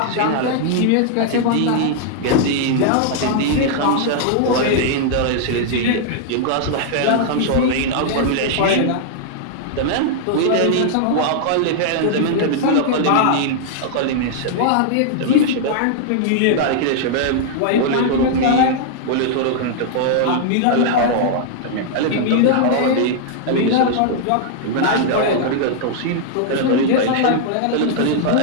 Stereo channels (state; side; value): different; both; correlation -0.01